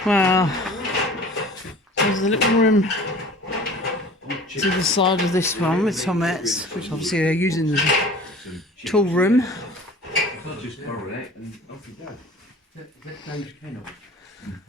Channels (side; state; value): both; normal; correlation 0.44